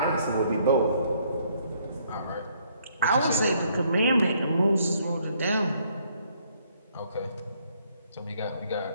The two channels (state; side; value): inverted; both; correlation -0.68